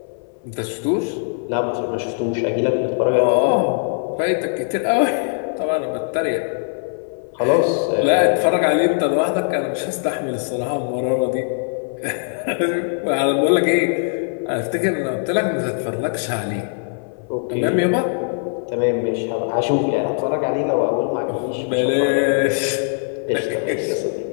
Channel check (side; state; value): right; silent; 59 dB below the other